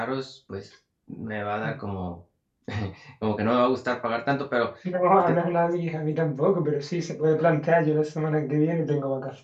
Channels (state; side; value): identical; both; correlation 1.00